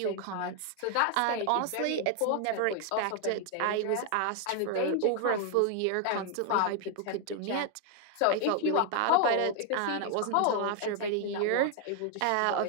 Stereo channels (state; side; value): different; both; correlation 0.00